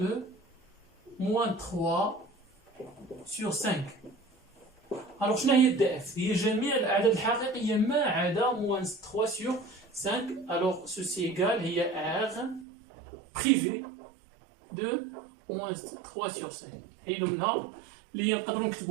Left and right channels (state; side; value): drops out; left; at 12.7 s